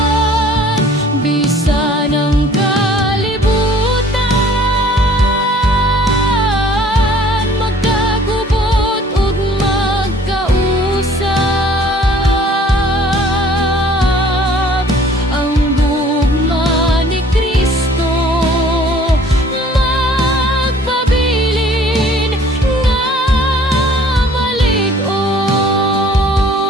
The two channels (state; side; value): normal; both; correlation 0.54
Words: Bisan ang kalibutan magkagubot ug magkausap, ang gugma ni Kristo magpabilin nga malig-on.